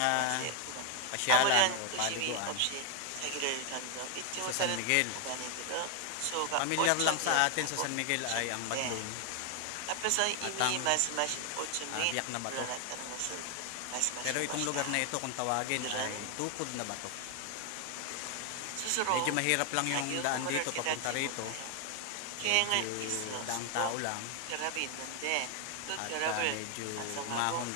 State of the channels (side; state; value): both; different; correlation 0.01